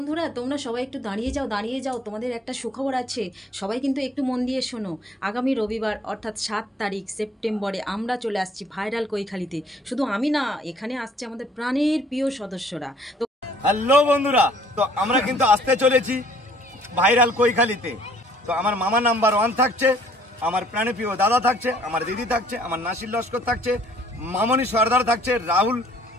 তোমরা সবাই একটু দাঁড়িয়ে যাও তোমাদের একটা সুখবর আছে। সবাই কিন্তু একটু মন দিয়ে শোনো। আগামী রবিবার অর্থাৎ 7 তারিখ সেপ্টেম্বরে আমরা চলে আসছি ভাইরাল কৈখালিতে। শুধু আমি না, এখানে আসছে আমাদের প্রাণের প্রিয় সদস্যরা। তো হ্যালো বন্ধুরা, তো আমরা কিন্তু আসতে চলেছি ভাইরাল কৈখালিতে। তো আমার মামা নাম্বার 1 থাকছে, আমার প্রাণপ্রিয় দাদা থাকছে, আমার দিদি থাকছে, আমার নাসির লস্কর থাকছে, মামনি সর্দার থাকছে, রাহুল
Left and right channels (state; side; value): normal; both; correlation 0.59